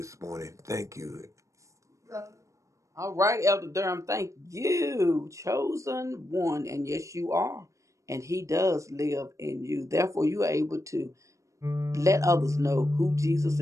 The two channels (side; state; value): left; late; 0.15 ms